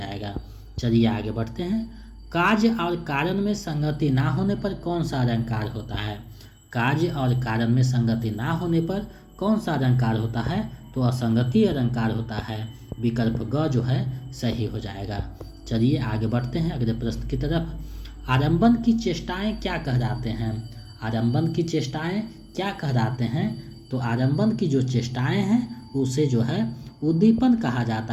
चलिए आगे बढ़ते हैं। कार्य और कारण में संगति ना होने पर कौन सा अलंकार होता है? कार्य और कारण में संगति ना होने पर कौन सा अलंकार होता है? तो असंगति अलंकार होता है। विकल्प ग जो है सही हो जाएगा। चलिए आगे बढ़ते हैं अगले प्रश्न की तरफ। आरंभन की चेष्टाएं क्या कहलाते हैं? आरंभन की चेष्टाएं क्या कहलाते हैं? तो आरंभन की जो चेष्टाएं हैं उसे जो है उद्दीपन कहा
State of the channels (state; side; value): identical; both; correlation 1.00